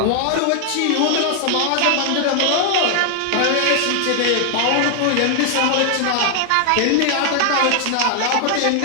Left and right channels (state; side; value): different; both; correlation 0.00